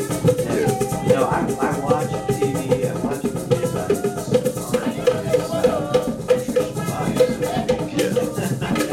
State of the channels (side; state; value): both; identical; correlation 1.00